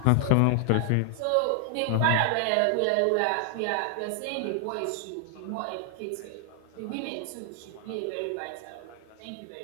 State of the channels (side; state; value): both; different; correlation 0.00